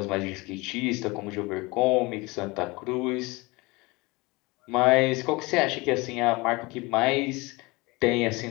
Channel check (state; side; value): quieter; right; 24.3 dB